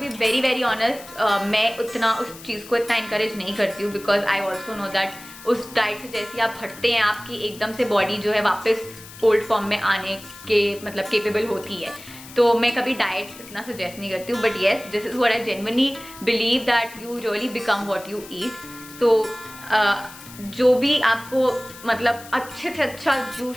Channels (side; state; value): left; noise; hiss, 17 dB below the sound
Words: be very very honest, मैं उतना उस चीज़ को इतना encourage नहीं करती हूँ, because I also know that उस डाइट से जैसे आप हटते हैं आपकी एकदम से बॉडी जो है वापस ओल्ड फॉर्म में आने के मतलब केपेबल होती है। तो मैं कभी डाइट इतना सजेस्ट नहीं करती हूँ, but yes this is what I genuinely believe that you really become what you eat. So जो भी आपको मतलब अच्छे से अच्छा